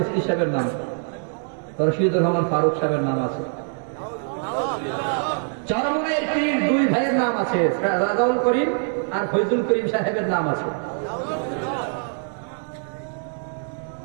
সাহেবের নাম। রশিদুর রহমান ফারুক সাহেবের নাম আছে। চরমনাইয়ের পীর 2 ভাইয়ের নাম আছে, রাজাউল করিম আর ফয়জুল করিম সাহেবের নাম আছে।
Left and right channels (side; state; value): left; silent; 61 dB below the other